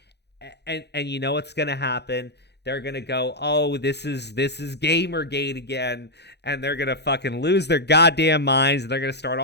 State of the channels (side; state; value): right; late; 0.49 ms